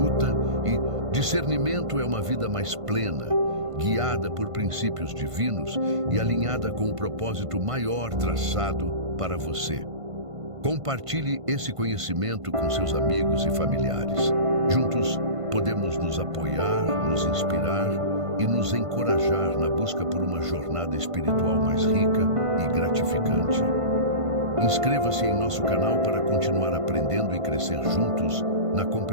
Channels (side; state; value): left; late; 1.5 ms